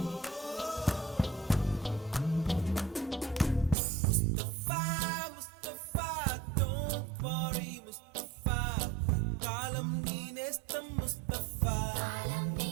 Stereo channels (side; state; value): left; drops out; at 3.8 s